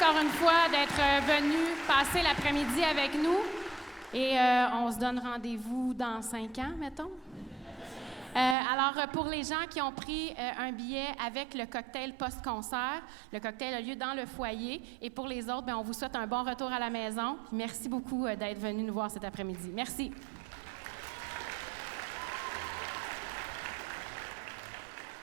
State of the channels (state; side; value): drops out; left; at 8.6 s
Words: une fois d'être venu passer l'après-midi avec nous. Et on se donne rendez-vous dans 5 ans, mettons. Alors, pour les gens qui ont pris un billet avec le cocktail post-concert, le cocktail a lieu dans le foyer. Et pour les autres, bien, on vous souhaite un bon retour à la maison. Merci beaucoup d'être venus nous voir cet après-midi. Merci.